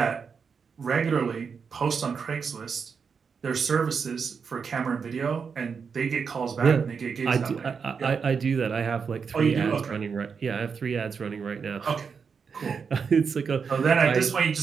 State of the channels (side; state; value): left; quieter; 5.9 dB